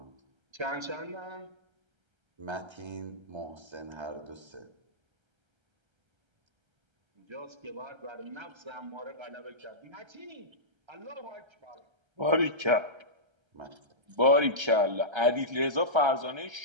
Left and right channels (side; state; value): left; late; 1.3 ms